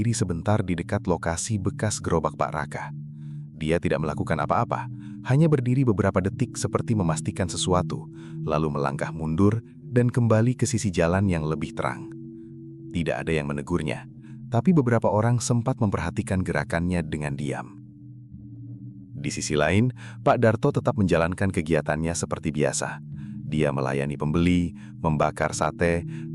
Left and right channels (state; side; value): identical; both; correlation 1.00